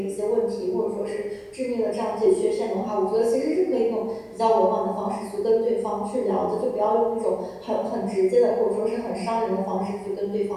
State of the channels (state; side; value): identical; both; correlation 1.00